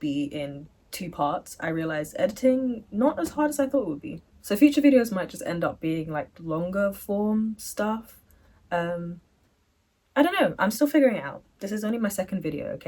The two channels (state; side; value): identical; both; correlation 1.00